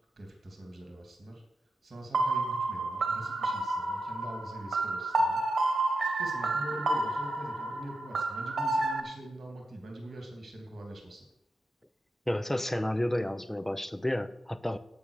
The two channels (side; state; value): both; normal; correlation 0.89